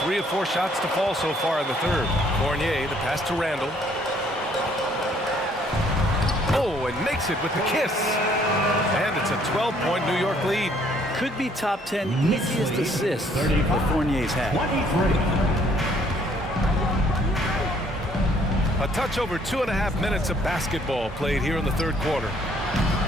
3 of 4 shots to fall so far in the third. Fournier, the pass to Randall. Oh, and makes it with the kiss. And it's a 12-point New York lead. Could be top 10 easiest assists that Fournier's had. A touch over 2.5 minutes of basketball played here in the third quarter.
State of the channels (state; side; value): normal; both; correlation 0.63